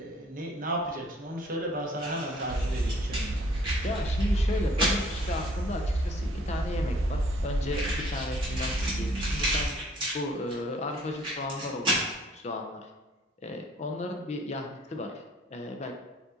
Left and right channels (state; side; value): normal; both; correlation 0.59